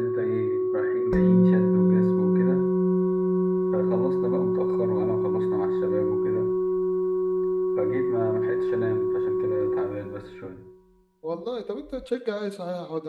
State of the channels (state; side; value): identical; both; correlation 1.00